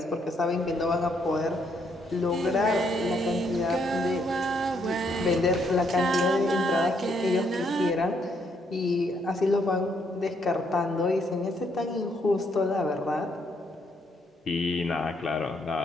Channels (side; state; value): both; normal; correlation 0.73